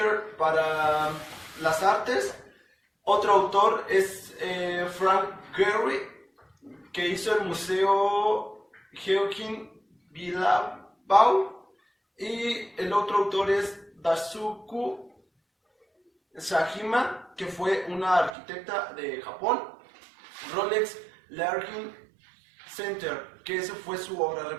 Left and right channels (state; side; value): drops out; left; at 18.4 s